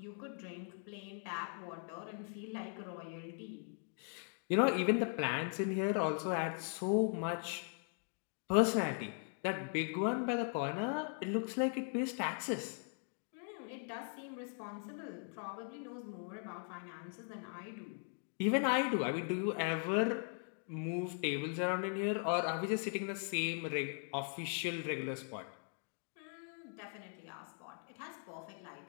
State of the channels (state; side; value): silent; right; 51 dB below the other